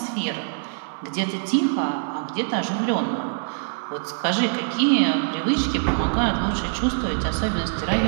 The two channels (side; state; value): left; silent; 63 dB below the other